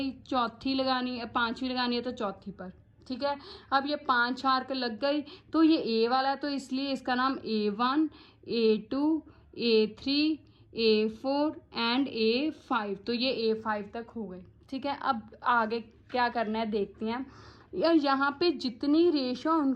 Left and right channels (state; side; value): identical; both; correlation 1.00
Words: चौथी लगानी है, पाँचवीं लगानी है तो चौथी पर, ठीक है। अब ये 5 आर्क लग गई। तो ये ए वाला है तो इसलिए इसका नाम A1, A2, A3, A4 and A5। तो ये A5 तक हो गई, ठीक है। अब आगे क्या करना है देखते हैं। यहाँ पे जितनी रेशो